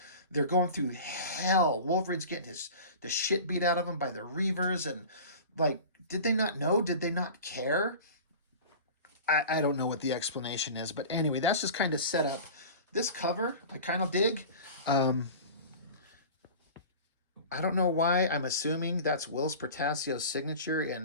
they're going through hell. Wolverine's getting the shit beat out of him by the Reavers, and like, did they not know? Did they not care? I don't know what the explanation is, but anyway, that's just kind of set up. This cover, I kind of dig. I don't know why. I'm assuming that's Whilce Portacio's signature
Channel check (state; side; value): inverted; both; correlation -0.37